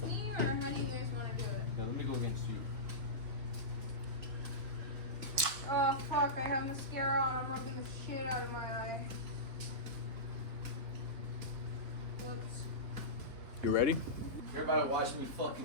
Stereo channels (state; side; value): late; left; 3.5 ms